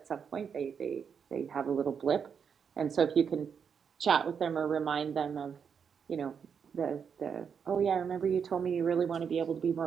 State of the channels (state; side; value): quieter; left; 6.9 dB